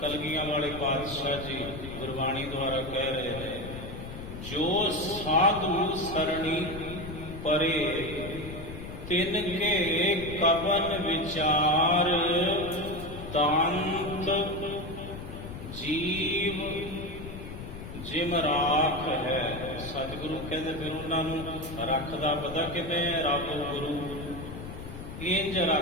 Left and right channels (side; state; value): left; noise; rumble, 10 dB below the sound